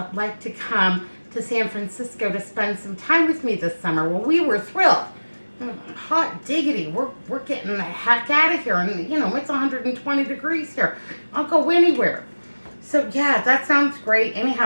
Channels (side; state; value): both; inverted; correlation -1.00